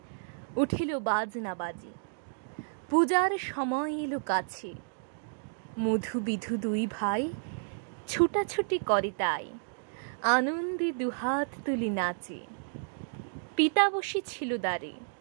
উঠিল বাজনা বাজি, পূজার সময় এলো কাছে। মধু বিধু দুই ভাই ছুটাছুটি করে তাই, আনন্দে দুহাত তুলি নাচে। পিতা বসি ছিল দ্বারে,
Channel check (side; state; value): left; silent; digital silence